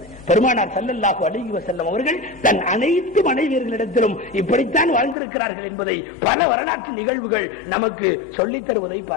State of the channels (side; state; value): right; drops out; at 5.2 s